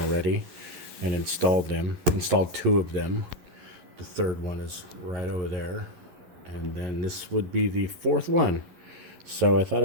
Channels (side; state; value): left; late; 11 ms